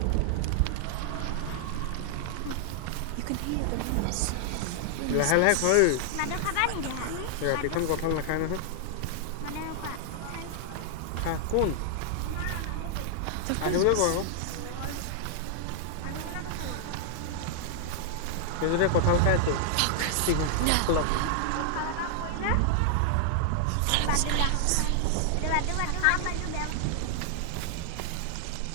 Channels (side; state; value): both; different; correlation 0.00